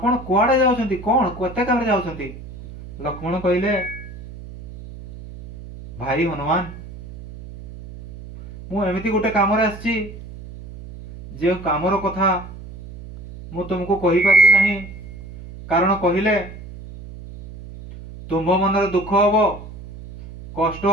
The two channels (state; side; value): noise; right; hum, 14 dB below the sound